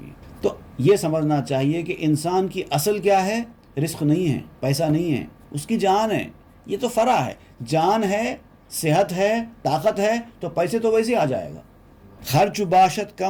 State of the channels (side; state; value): both; identical; correlation 1.00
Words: تو یہ سمجھنا چاہیے کہ انسان کی اصل کیا ہے؟ رزق نہیں ہے، پیسہ نہیں ہے، اس کی جان ہے۔ یہ تو فرع ہے. جان ہے، صحت ہے، طاقت ہے تو پیسے تو ویسے آ جائے گا. خرچ باشد